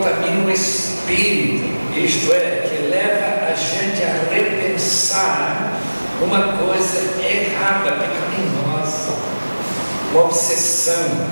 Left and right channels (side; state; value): both; inverted; correlation -1.00